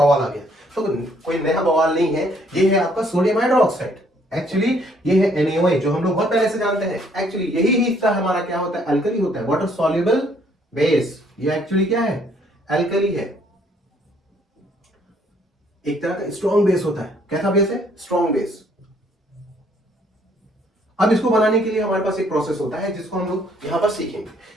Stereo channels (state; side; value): normal; both; correlation 0.65